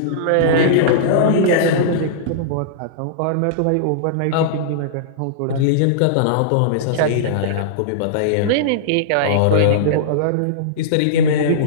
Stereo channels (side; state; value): both; different; correlation -0.03